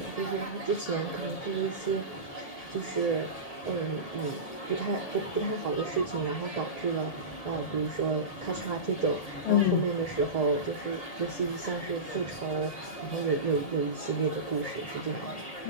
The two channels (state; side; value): late; right; 1.8 ms